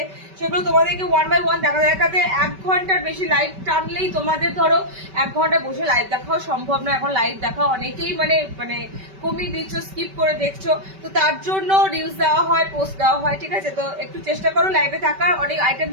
সেগুলো তোমাদেরকে ওয়ান বাই ওয়ান দেখাতে 1 ঘন্টার বেশি লাইভ টানলেই তোমাদের ধরো 1 ঘন্টা বসে লাইভ দেখাও সম্ভব না। এখন লাইভ দেখা অনেকেই মানে কমিয়ে দিচ্ছ, স্কিপ করে দেখছো, তো তার জন্য রিলস দেওয়া হয়, পোস্ট দেওয়া হয়, ঠিক আছে? তো একটু চেষ্টা করো লাইভে থাকার, অনেক আইটেম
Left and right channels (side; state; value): left; late; 5.2 ms